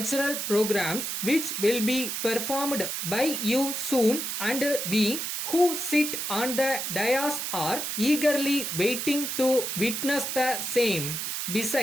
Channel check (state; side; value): noise; right; hiss, 3 dB below the sound